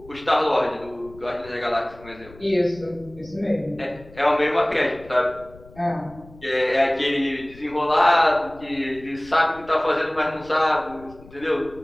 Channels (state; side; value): noise; left; rumble, 22 dB below the sound